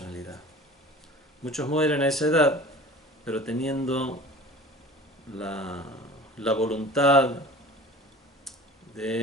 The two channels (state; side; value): normal; both; correlation 0.41